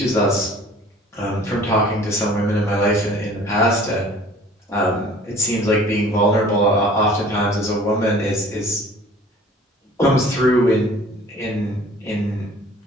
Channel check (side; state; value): both; normal; correlation 0.49